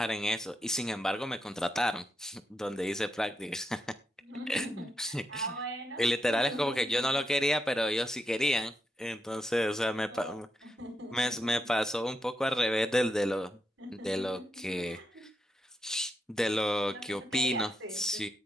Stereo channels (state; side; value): normal; both; correlation 0.83